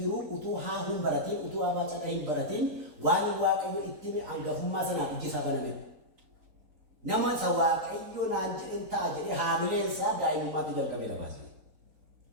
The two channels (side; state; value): left; late; 3.9 ms